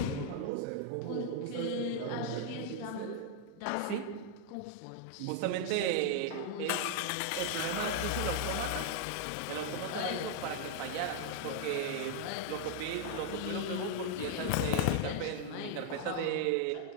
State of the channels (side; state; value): both; different; correlation 0.00